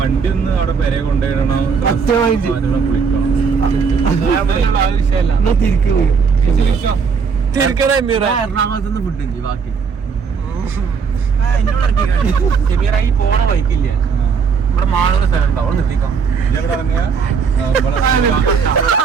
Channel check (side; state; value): left; quieter; 5.8 dB